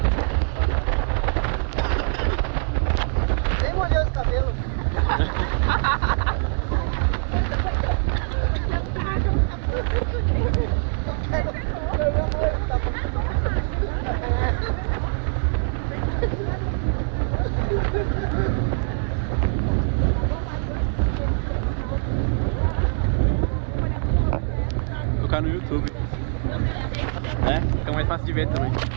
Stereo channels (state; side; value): silent; left; 58 dB below the other